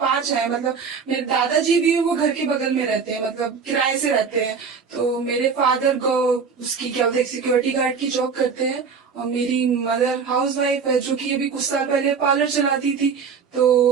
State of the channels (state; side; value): quieter; left; 5.8 dB